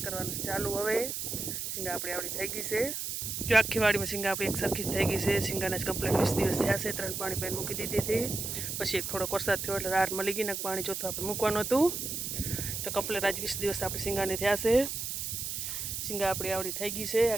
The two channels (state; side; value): noise; right; hiss, 4 dB below the sound